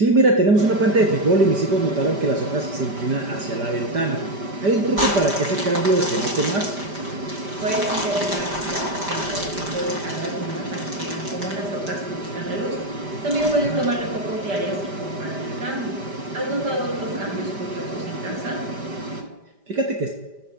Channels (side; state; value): left; late; 5.1 ms